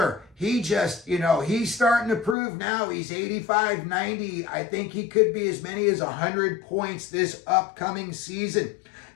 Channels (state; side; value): drops out; right; at 2.4 s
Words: He just, you know, he's starting to prove now. He's 85, 90. I think he could be as many as 100 points this upcoming season.